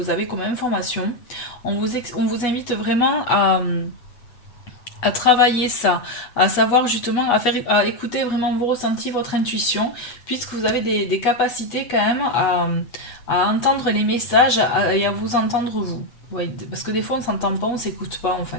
avez comme information. On vous invite vraiment à travailler ça, à savoir justement, à écouter vraiment vos ressentis, votre intuition, puisque vous avez des capacités quand même à entendre les messages et à vous entendre vous. Oui, parce que des fois on s'entend pas, on s'écoute pas en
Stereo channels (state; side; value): late; right; 8.0 ms